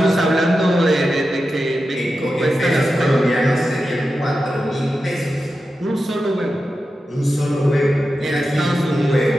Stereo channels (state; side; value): normal; both; correlation 0.91